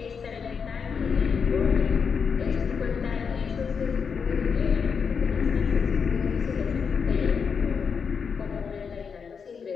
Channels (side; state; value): right; quieter; 6.1 dB